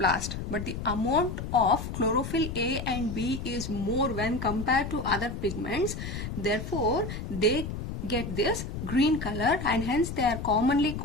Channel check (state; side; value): noise; left; rumble, 6 dB below the sound